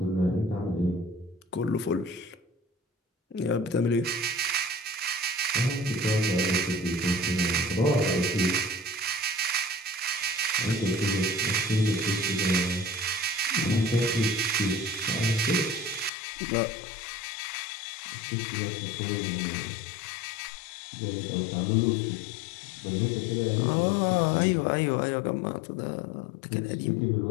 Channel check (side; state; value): right; drops out; at 16.1 s